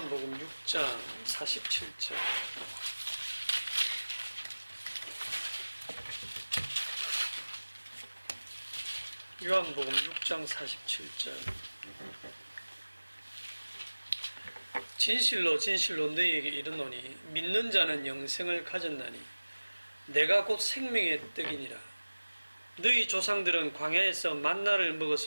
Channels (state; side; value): inverted; both; correlation -1.00